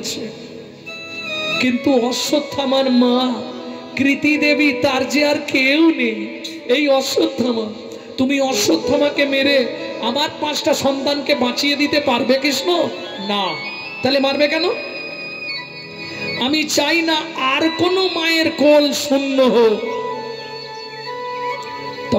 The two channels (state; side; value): identical; both; correlation 1.00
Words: কিন্তু অশ্বত্থামার মা কৃতি দেবী, তার যে আর কেউ নেই, এই অশ্বত্থামা। তুমি অশ্বত্থামাকে মেরে আমার 5টা সন্তানকে বাঁচিয়ে দিতে পারবে কৃষ্ণ? না। তাহলে মারবে কেন? আমি চাই না আর কোনো মায়ের কোল শূন্য হোক।